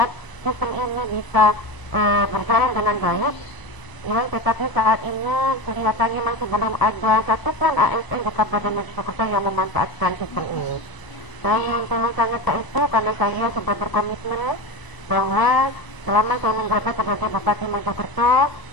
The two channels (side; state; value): right; late; 1.0 ms